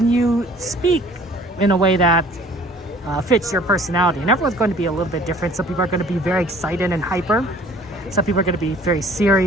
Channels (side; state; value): both; normal; correlation 0.53